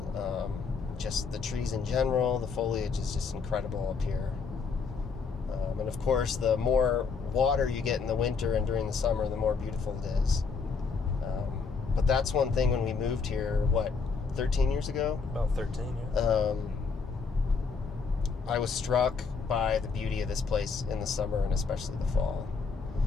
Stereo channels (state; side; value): quieter; right; 5.1 dB